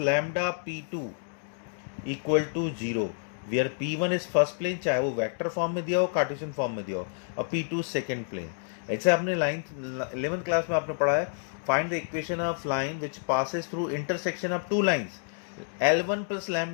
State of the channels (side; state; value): right; silent; digital silence